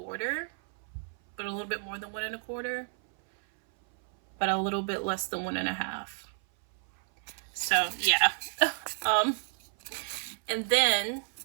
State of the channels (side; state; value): left; silent; 56 dB below the other